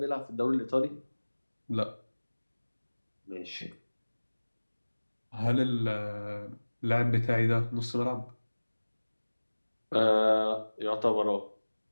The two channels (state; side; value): inverted; both; correlation -1.00